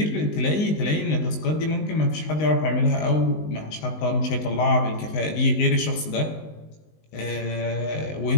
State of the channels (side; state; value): right; late; 19 ms